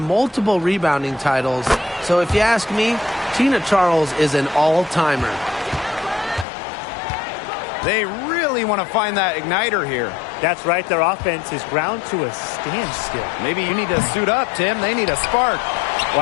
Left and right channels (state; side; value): drops out; right; at 6.5 s